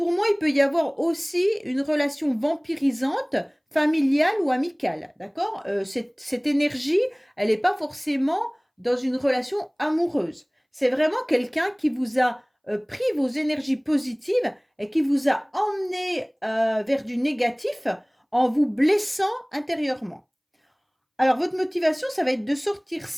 moi, il peut y avoir aussi une relation vampirisante, familiale ou amicale, d'accord? Cette énergie, elle n'est pas forcément dans une relation amoureuse. C'est vraiment quelqu'un qui vous a pris vos énergies positives et qui vous a emmené vers du négatif en vous blessant intérieurement. Alors, votre motivation, ça va être de sortir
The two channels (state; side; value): identical; both; correlation 1.00